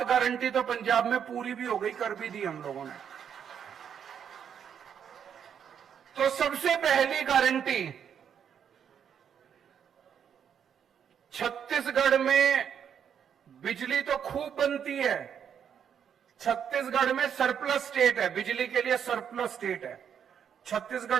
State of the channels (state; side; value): quieter; left; 8.1 dB